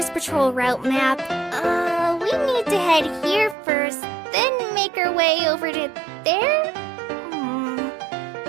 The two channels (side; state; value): left; drops out; at 3.6 s